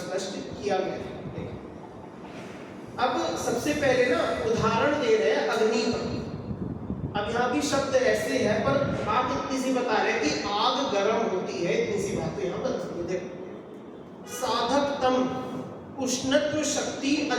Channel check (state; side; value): identical; both; correlation 1.00